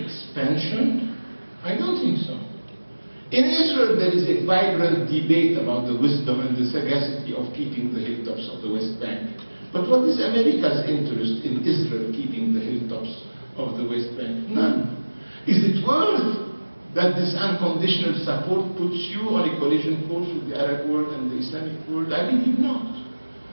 I don't think so. In Israel, there is a vibrant debate about the wisdom and the sagacity of keeping the hilltops of the West Bank. But what is America's interest in Israel keeping the hilltops of the West Bank? None. Is it worth that this unconditional support puts you on a collision course with the Arab world and the Islamic world? I believe not.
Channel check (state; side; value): inverted; both; correlation -1.00